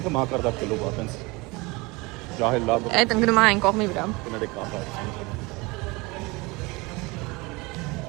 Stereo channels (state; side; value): quieter; left; 24.7 dB